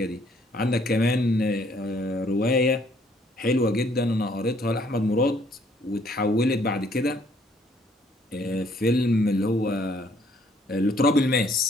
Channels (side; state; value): both; normal; correlation 0.64